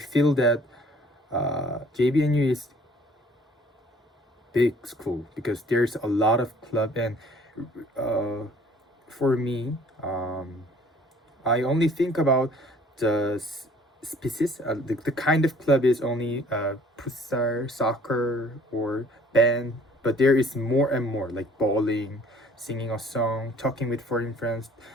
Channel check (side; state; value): both; normal; correlation 0.55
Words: that JBNU is big school because there's a lot of club, and for me, I only think about the species. The kind of club is only futsal, soccer, or band, but there is more and more, like bowling, singing a song, talking with foreign friends,